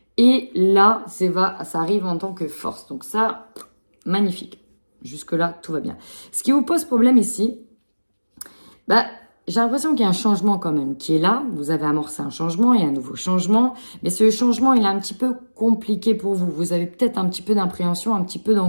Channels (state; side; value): inverted; both; correlation -1.00